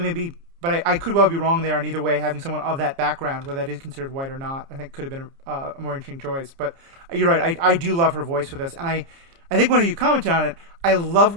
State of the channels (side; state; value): left; late; 30 ms